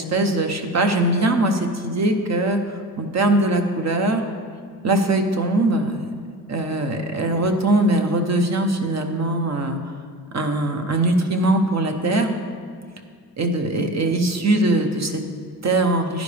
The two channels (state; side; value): normal; both; correlation 0.34